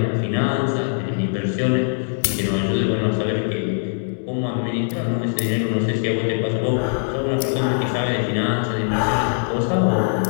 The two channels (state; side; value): silent; right; digital silence